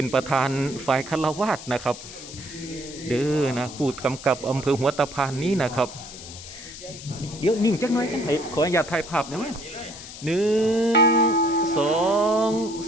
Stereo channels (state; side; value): noise; left; hiss, 14 dB below the sound